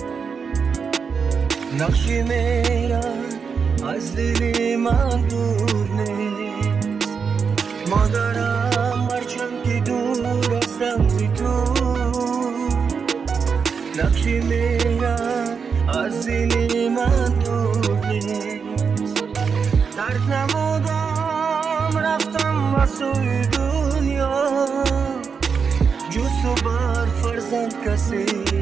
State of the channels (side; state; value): left; quieter; 5.9 dB